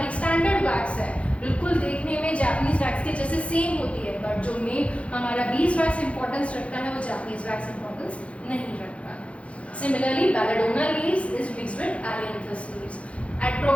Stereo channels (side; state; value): right; late; 0.062 ms